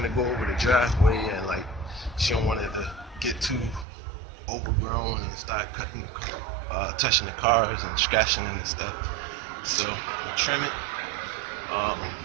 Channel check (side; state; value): left; drops out; at 3.9 s